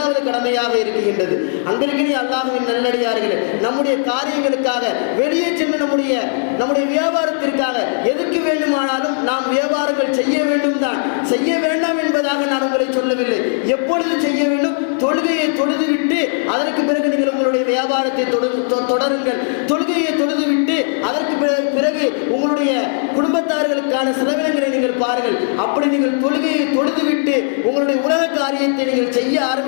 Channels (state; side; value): silent; right; digital silence